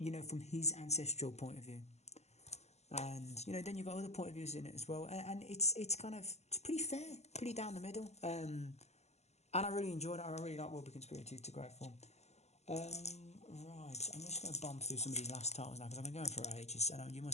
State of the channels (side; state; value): right; late; 0.32 ms